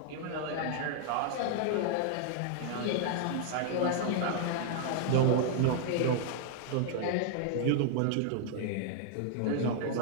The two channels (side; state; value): both; different; correlation 0.00